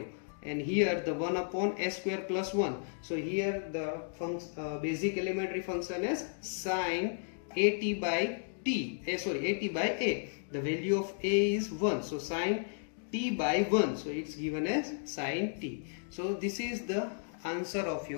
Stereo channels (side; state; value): right; silent; digital silence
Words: and here the 1 upon s square plus 1. So here the basic elementary function is sin at by t, at by a. The value of a is 1, so sin t by 1, so it's given as sin t. So this is the answer of